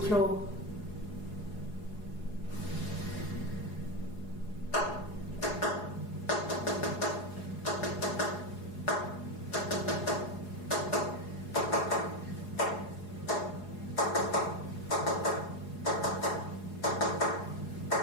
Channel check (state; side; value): late; right; 4.8 ms